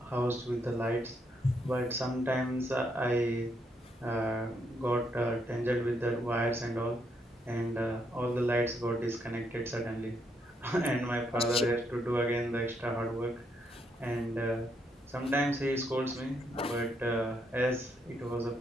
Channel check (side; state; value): both; normal; correlation 0.76